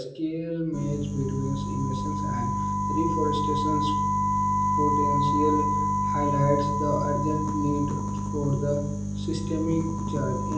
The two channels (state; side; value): identical; both; correlation 1.00